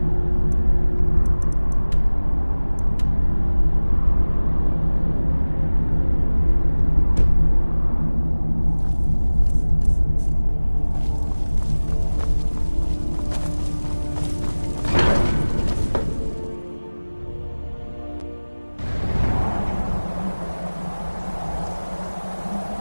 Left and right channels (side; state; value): both; inverted; correlation -1.00